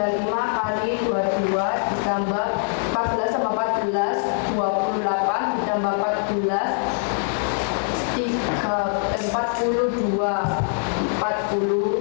5 kali 22 ditambah 14 sama 14 28 ditambah 14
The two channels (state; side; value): silent; right; 60 dB below the other